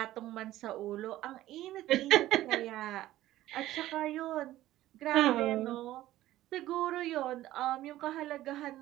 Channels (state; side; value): quieter; left; 14.8 dB